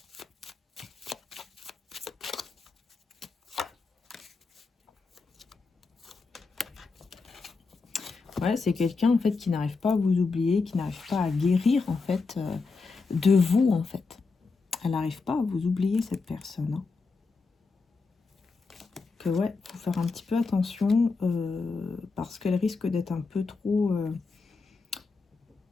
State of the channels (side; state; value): right; quieter; 4.2 dB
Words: Ouais, c'est quelqu'un en fait qui n'arrive pas à vous oublier, qui n'arrive pas à guérir en fait de vous en fait. Elle n'arrive pas à vous oublier cette personne, hein. Que ouais, faut faire un petit peu attention parce qu'elle risque d'être un petit